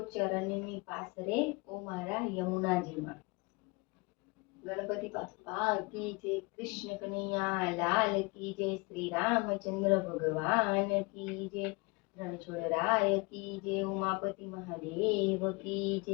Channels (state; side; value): quieter; right; 27.6 dB